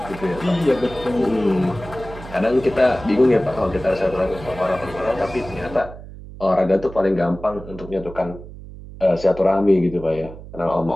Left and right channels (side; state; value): right; noise; hum, 15 dB below the sound